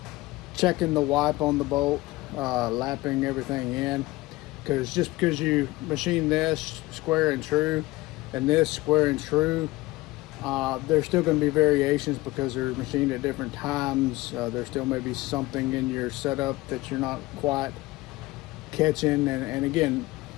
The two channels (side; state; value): right; quieter; 19.6 dB